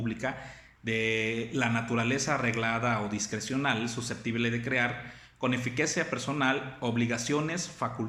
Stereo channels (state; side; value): identical; both; correlation 1.00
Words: de la naturaleza reglada o discrecional susceptible de crear con eficacia personal obligaciones,